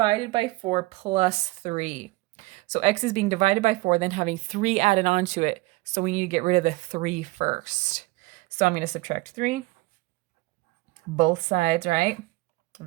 by 4 plus 3. So x is being divided by 4, then having 3 added on to it. So we need to get rid of the 3 first. So I'm going to subtract 3. Both sides, right?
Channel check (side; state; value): left; quieter; 21.6 dB